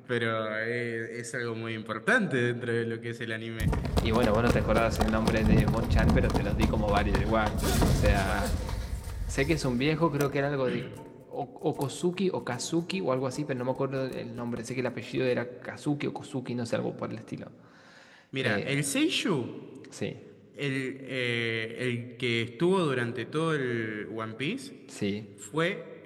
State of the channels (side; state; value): both; identical; correlation 1.00